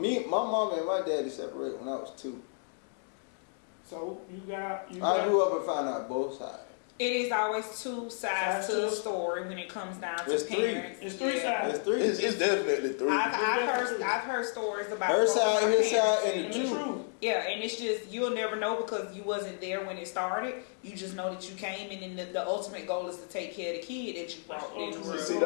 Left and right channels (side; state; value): right; silent; 57 dB below the other